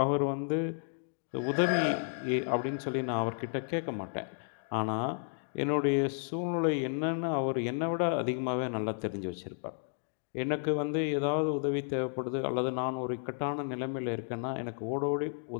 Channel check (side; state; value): right; silent; digital silence